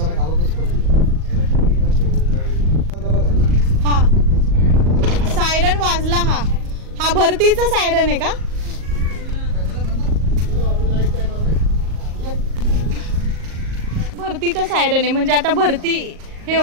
हा, सायरन वाजला. हा भरतीचा सायरन आहे का? भरतीचा सायरन आहे म्हणजे आता भरती हे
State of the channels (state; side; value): late; left; 38 ms